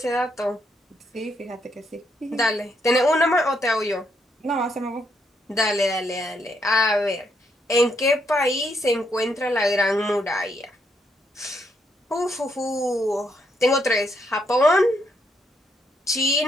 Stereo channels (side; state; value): both; normal; correlation 0.76